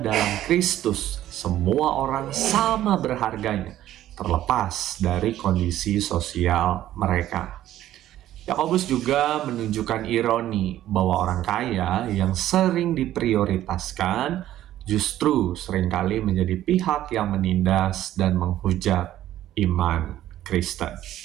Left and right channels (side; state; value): left; quieter; 13.1 dB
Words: Kristus semua orang sama berharganya terlepas dari kondisi sosial mereka. Yakobus juga menunjukkan ironi bahwa orang kaya yang sering diprioritaskan justru seringkali menjadi pihak yang menindas dan menghujat iman Kristen.